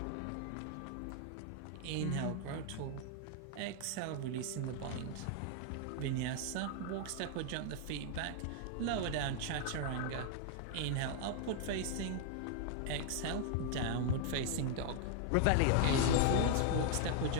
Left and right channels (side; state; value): both; different; correlation 0.00